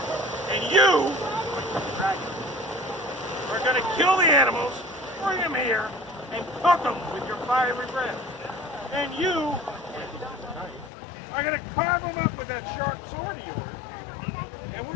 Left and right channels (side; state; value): right; drops out; at 10.9 s